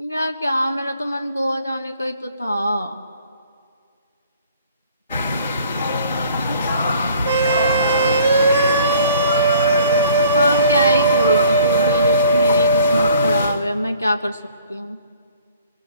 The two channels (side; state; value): both; inverted; correlation -0.55